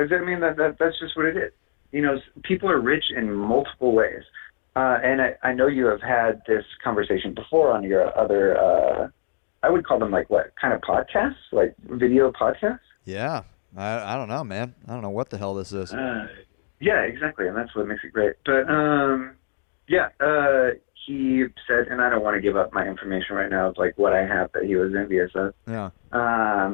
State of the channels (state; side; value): silent; right; digital silence